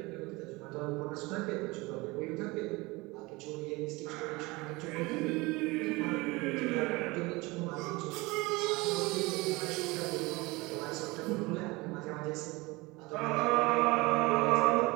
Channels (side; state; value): left; quieter; 23.3 dB